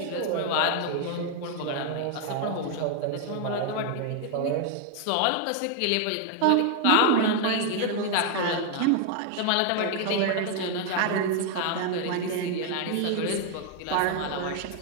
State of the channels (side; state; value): both; different; correlation 0.00